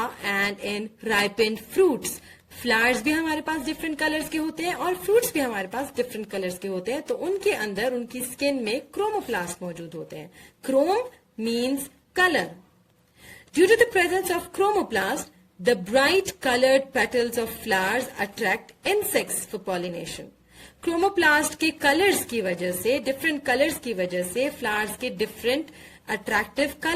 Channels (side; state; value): both; identical; correlation 1.00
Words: and in ripened fruits. Flowers भी हमारे पास डिफरेंट कलर्स के होते हैं और फ्रूट्स भी हमारे पास डिफरेंट कलर्स के होते हैं, तो उनके अंदर उनकी स्किन में क्रोमोप्लास्ट मौजूद होते हैं. Chrome means colour. Due to the presence of chromoplast, the bright coloured petals of flowers attract insects for pollination. Chromoplast के कलर्स की वजह से, डिफरेंट कलर्स की वजह से फ्लावर्स के डिफरेंट attractive